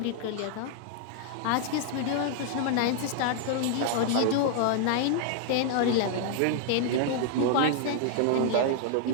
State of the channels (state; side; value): different; both; correlation -0.01